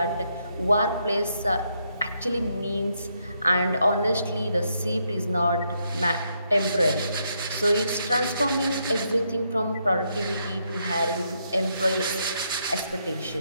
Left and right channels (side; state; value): both; inverted; correlation -0.77